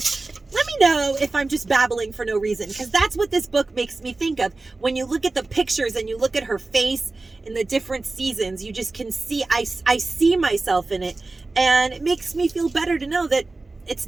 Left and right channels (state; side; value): quieter; left; 3.4 dB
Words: Let me know if I'm just babbling for no reason, because that's what this book makes me think of. When you look at the pictures and you look at her face in the different seasons, you just can see, I see myself in it. And it makes me feel better to know that it's